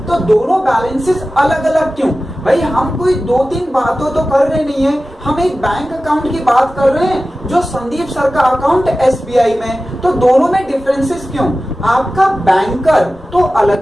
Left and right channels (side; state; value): both; normal; correlation 0.95